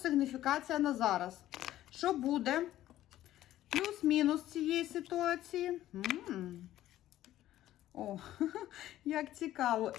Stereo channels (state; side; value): quieter; right; 13.7 dB